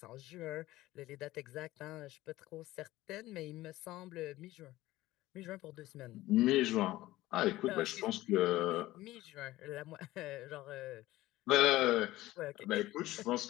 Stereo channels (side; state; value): right; quieter; 16.8 dB